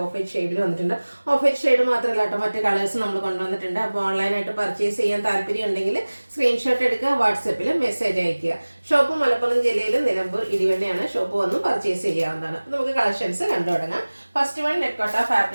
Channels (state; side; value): inverted; both; correlation -1.00